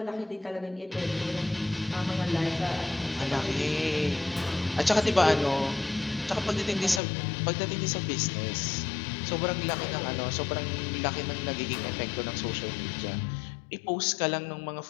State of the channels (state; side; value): drops out; right; at 7.0 s